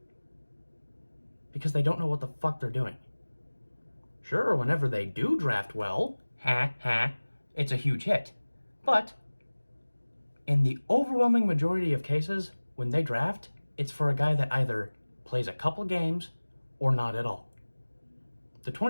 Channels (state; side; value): inverted; both; correlation -1.00